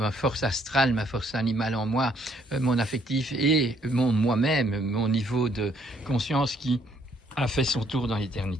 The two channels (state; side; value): normal; both; correlation 0.67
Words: force astrale, ma force animale en moi, mon affectif et moi-même, mon niveau de conscience qui a fait son tour dans